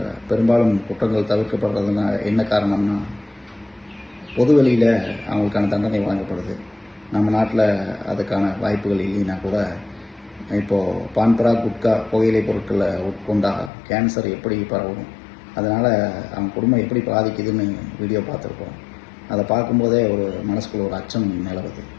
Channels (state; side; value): drops out; right; at 13.7 s